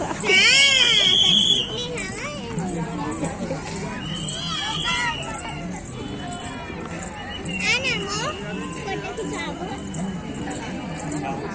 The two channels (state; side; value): identical; both; correlation 1.00